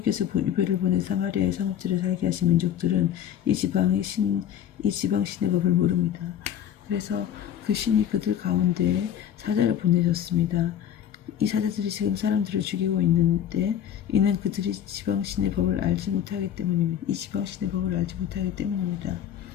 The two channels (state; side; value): quieter; right; 9.8 dB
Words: 유배를 보내 사마리아의 성읍들에 살게 하신 민족들은 이 지방 신의 법을 모릅니다. 그래서 그 신이 그들 가운데 사자를 보내셨습니다. 이 사자들이 지금 사람들을 죽이고 있는데 이는 그들이 지방 신의 법을 알지 못하기 때문입니다.